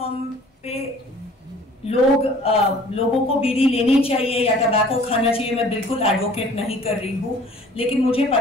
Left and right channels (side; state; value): both; normal; correlation 0.51